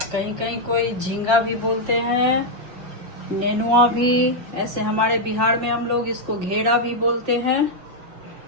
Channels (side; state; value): left; late; 5.7 ms